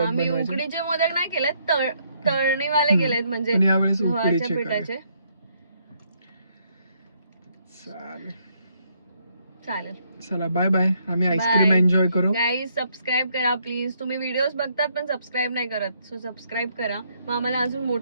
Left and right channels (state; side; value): inverted; both; correlation -0.72